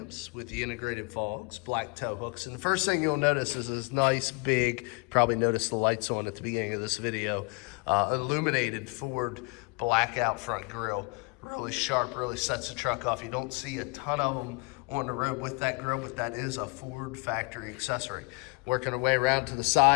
with the integrated fogs, black tow hooks. And the first thing you'll notice is this nice big, probably noticed the lights on at the beginning of this video, illuminated Ford blackout front grille. Really sharp, really sets the truck off. You don't see a ton of them on the road with that grille, but that is a Ford factory accessory. Working our way around to the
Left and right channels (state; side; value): quieter; right; 30.5 dB